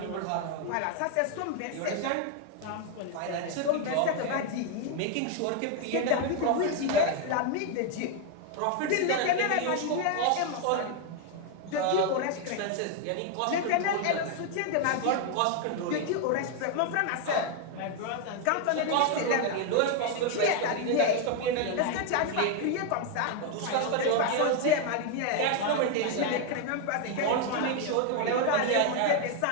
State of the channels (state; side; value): different; both; correlation 0.01